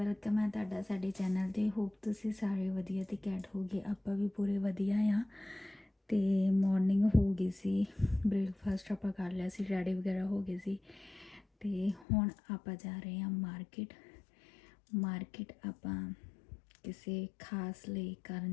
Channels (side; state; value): right; drops out; at 12.1 s